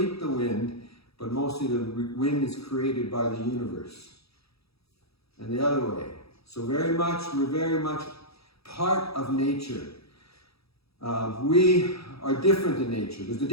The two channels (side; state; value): right; late; 0.77 ms